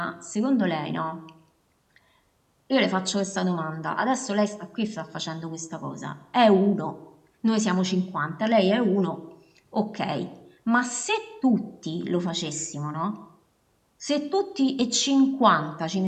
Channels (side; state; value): both; identical; correlation 1.00